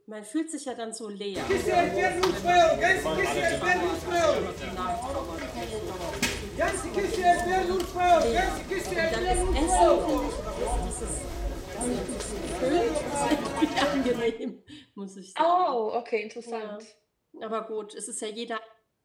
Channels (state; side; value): identical; both; correlation 1.00